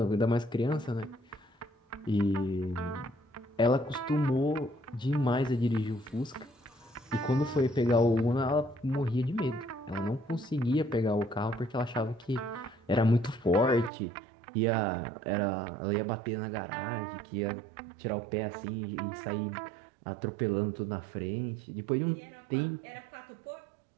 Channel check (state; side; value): drops out; left; at 13.9 s